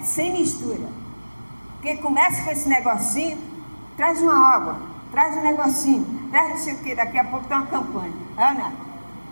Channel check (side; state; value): both; inverted; correlation -1.00